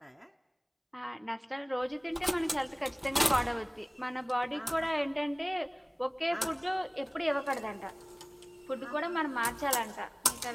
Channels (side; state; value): both; identical; correlation 1.00